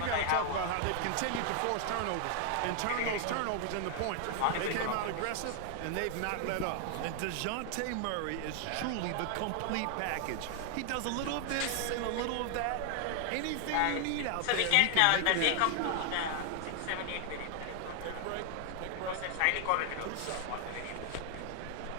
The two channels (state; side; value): different; both; correlation 0.00